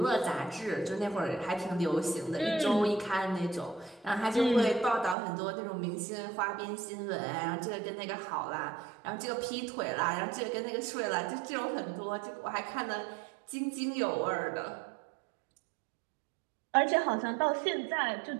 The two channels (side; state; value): left; drops out; at 5.2 s